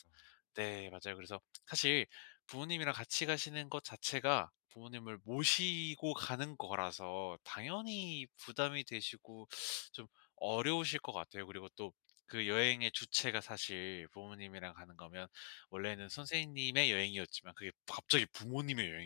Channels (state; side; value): silent; right; digital silence